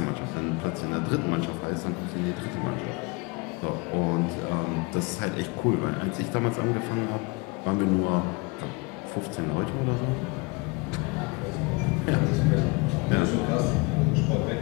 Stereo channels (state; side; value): quieter; right; 27.4 dB